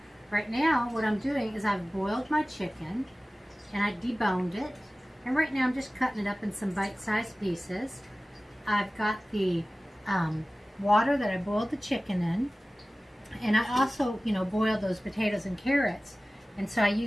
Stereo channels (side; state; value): both; normal; correlation 0.97